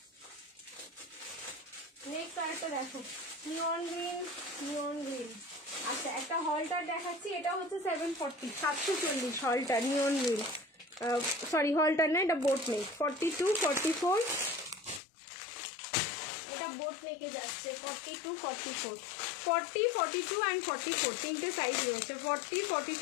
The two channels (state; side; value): drops out; right; at 15.0 s